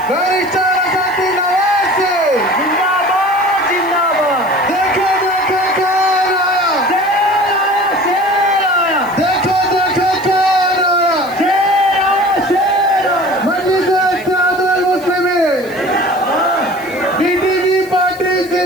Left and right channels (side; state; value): left; noise; hiss, 22 dB below the sound